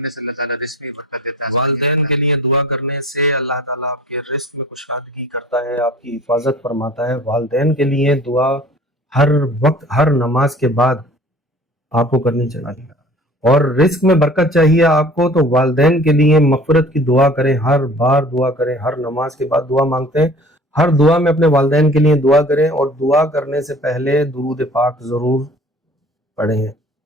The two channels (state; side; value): normal; both; correlation 0.47